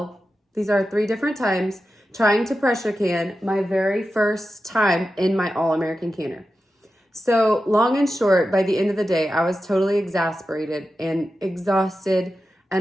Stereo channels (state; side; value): normal; both; correlation 0.91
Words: These are 3 different times trying to pressure can my very first time in my all-American canner. So long and short, by the end of the day, I was totally exasperated and exhausted